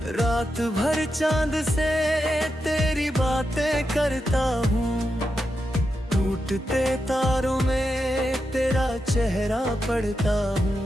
रात भर चांद से तेरी बातें करता हूँ, टूटते तारों में तेरा चेहरा पढ़ता हूँ।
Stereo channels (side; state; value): both; normal; correlation 0.87